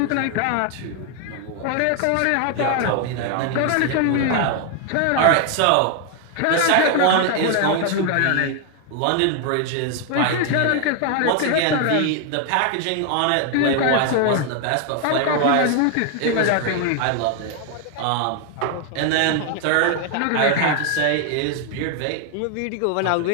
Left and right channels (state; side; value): different; both; correlation 0.00